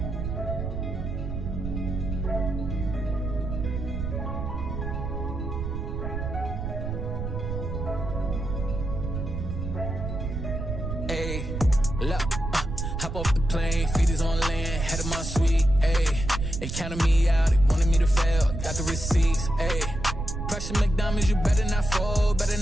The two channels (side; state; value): right; noise; rumble, 4 dB below the sound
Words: Ayy, look, hop off the plane, feet is on land, head of my suite, ayy. They counted me out, they wanted me to fail, got the receipts, ayy. Pressure McDonald's, you better not fold, better